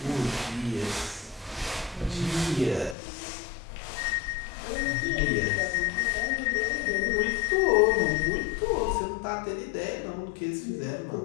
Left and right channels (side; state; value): right; drops out; at 3.0 s